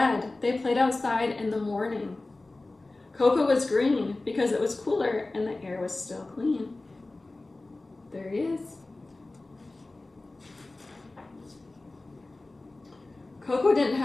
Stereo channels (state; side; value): quieter; right; 3.0 dB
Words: they played outside in the morning. Coco was green because it was cooler and the air was still clean. There he is. Coco didn't